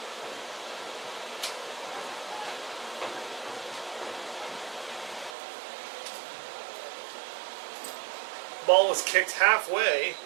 Ball was kicked halfway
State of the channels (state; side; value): drops out; left; at 5.4 s